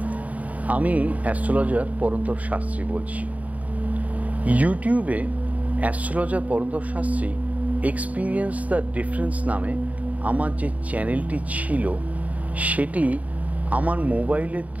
আমি অ্যাস্ট্রোলজার পরন্তপ শাস্ত্রী বলছি। ইউটিউবে astrologer Parantapa Shastri experience the difference নামে আমার যে চ্যানেলটি ছিল, সেটি আমার মোবাইলের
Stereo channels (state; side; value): late; left; 0.071 ms